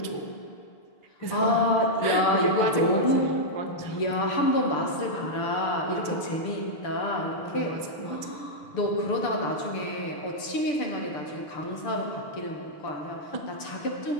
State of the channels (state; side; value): late; right; 6.7 ms